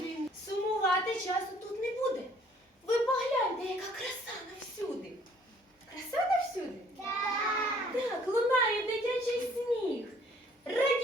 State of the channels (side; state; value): both; normal; correlation 0.59